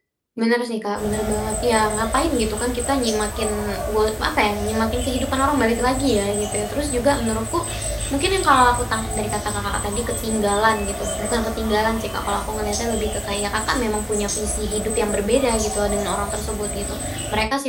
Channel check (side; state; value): both; identical; correlation 1.00